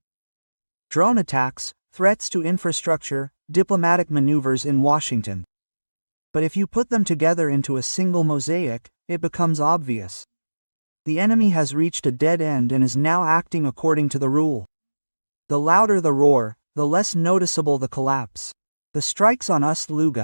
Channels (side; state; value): both; inverted; correlation -1.00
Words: Drone attacks, threats to infrastructure, diplomatic maneuvers in Washington. But if you put them together into a single mosaic, it becomes obvious. The enemy has reached a dead end and is now acting according to the rule. The louder the roar, the less noticeable the collapse. The strikes on